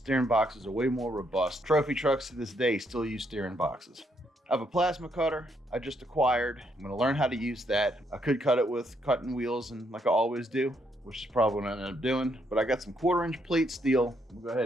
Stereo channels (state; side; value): normal; both; correlation 0.74